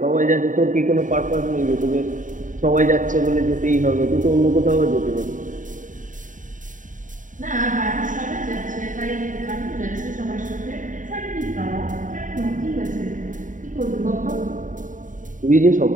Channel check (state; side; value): late; left; 0.38 ms